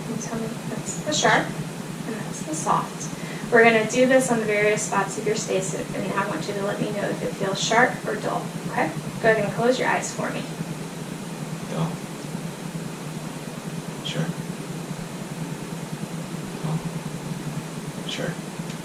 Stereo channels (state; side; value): identical; both; correlation 1.00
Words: you tell me that's the sharp and that's the soft? We're going to do this on the various spots of your face, and I want you to let me know if it feels sharp or dull. Okay? Go ahead and close your eyes for me. Dull. Sure. Dull. Sure.